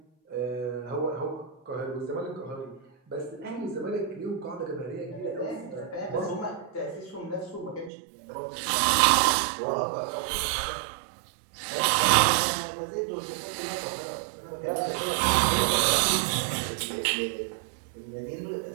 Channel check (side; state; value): left; drops out; at 7.9 s